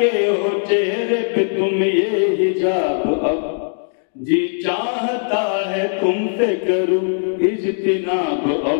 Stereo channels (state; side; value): silent; right; 66 dB below the other